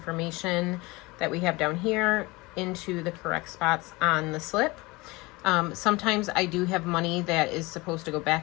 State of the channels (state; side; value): quieter; right; 23.2 dB